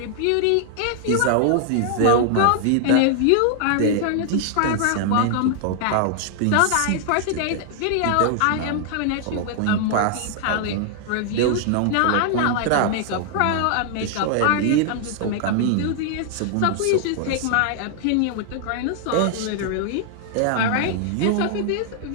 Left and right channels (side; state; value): both; different; correlation 0.00